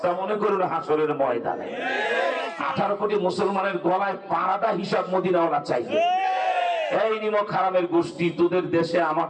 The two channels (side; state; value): both; identical; correlation 1.00